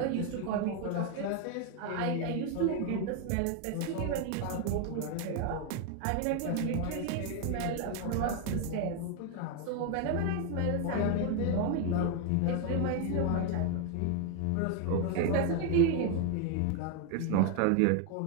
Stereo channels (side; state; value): both; different; correlation 0.01